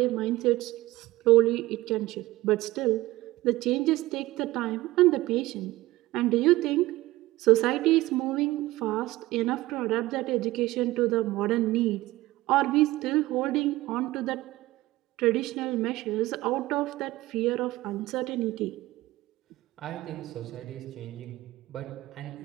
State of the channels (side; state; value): left; quieter; 18.1 dB